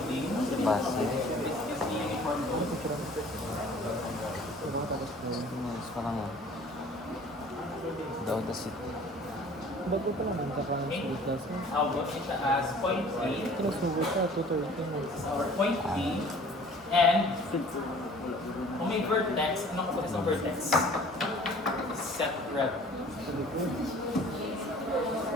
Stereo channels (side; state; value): both; normal; correlation 0.50